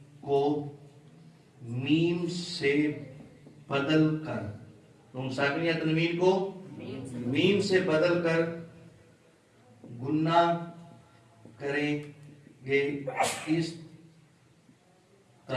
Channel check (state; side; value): identical; both; correlation 1.00